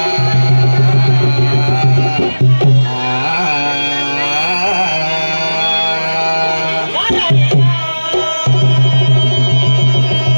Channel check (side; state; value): both; inverted; correlation -1.00